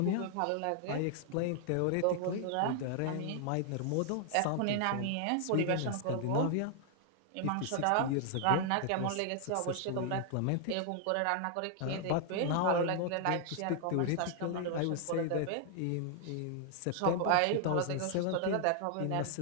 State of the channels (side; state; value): both; different; correlation 0.00